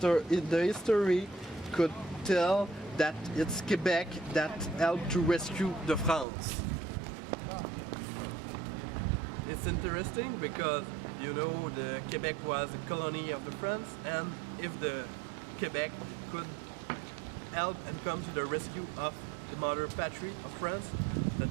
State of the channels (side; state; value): left; drops out; at 6.2 s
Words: history could tell that it's Quebec that helped to rescue the France. It's interesting because, you know, the Quebec was a colony of the France, and if the Quebec could help and come to the rescue of the mother patrie of France, that